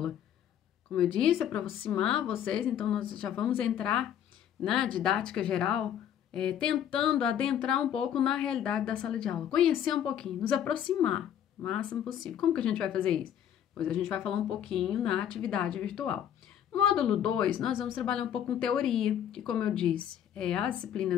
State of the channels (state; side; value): quieter; right; 9.9 dB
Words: Como eu disse, é para aproximar vocês, então nós já vamos entrar na didática geral tentando adentrar um pouco na realidade da sala de aula, conhecer um pouquinho, nos aproximar o máximo possível. Como que a gente vai fazer isso? Pois a gente vai falar um pouquinho na atividade virtual. No módulo 2, nós vamos trabalhar um pouco com teoria, que, como eu disse, as